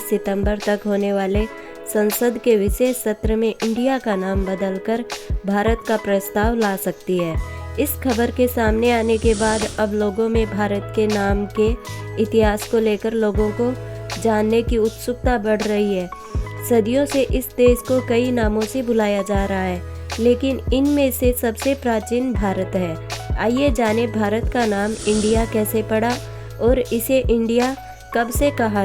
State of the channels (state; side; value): identical; both; correlation 1.00